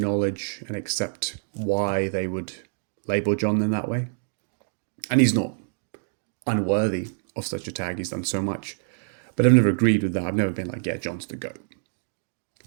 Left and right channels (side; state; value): left; silent; digital silence